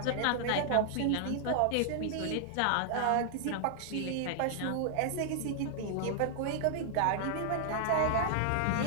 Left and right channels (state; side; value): different; both; correlation -0.01